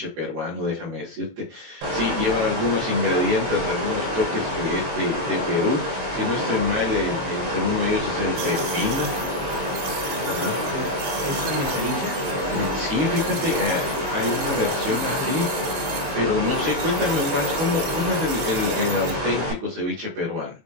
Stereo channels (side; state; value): left; late; 23 ms